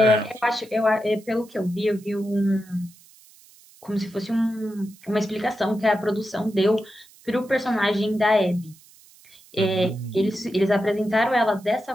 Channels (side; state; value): right; noise; hiss, 26 dB below the sound